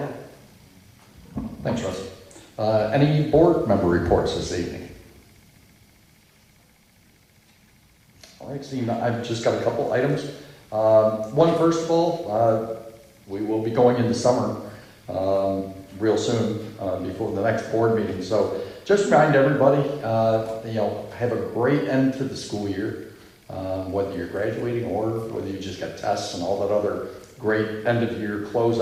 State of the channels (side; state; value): both; identical; correlation 1.00